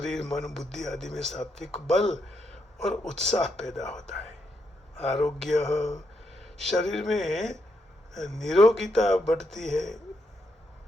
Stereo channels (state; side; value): normal; both; correlation 0.80